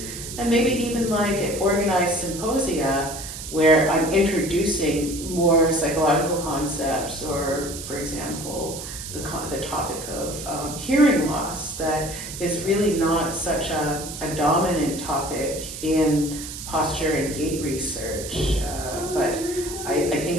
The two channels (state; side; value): noise; right; hiss, 9 dB below the sound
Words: maybe even like at organized symposia where I'm introducing more psychological concepts or, for example, the topic of hearing loss that is really not such a dominant topic in posture and gait research, but I